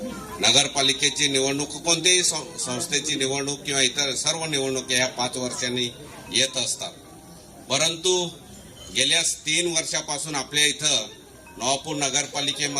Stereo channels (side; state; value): both; identical; correlation 1.00